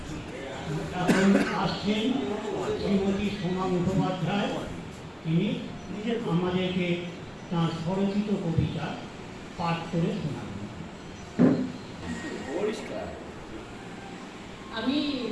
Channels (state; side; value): identical; both; correlation 1.00